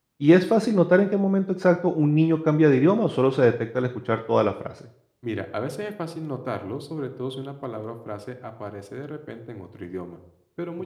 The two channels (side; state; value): both; identical; correlation 1.00